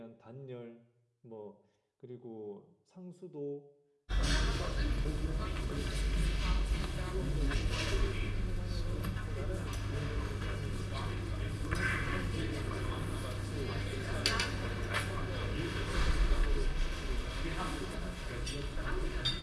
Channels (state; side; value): identical; both; correlation 1.00